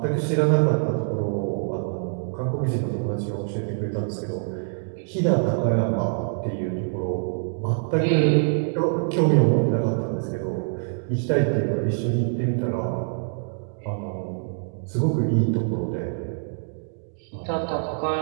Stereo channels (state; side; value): silent; left; digital silence